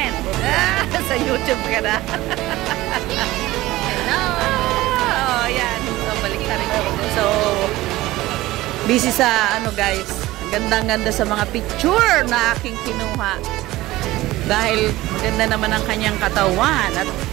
Sa YouTube ka na. Hello! Ayan, so balik na rin ako. So, busy sa guys, gandang-ganda sa mga picture na aking kinuha. Dahil ganda naman ang kanyang katawan at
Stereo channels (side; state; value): left; quieter; 17.6 dB